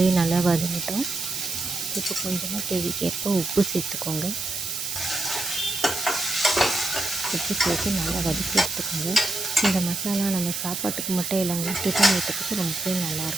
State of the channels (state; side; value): noise; right; hiss, 4 dB below the sound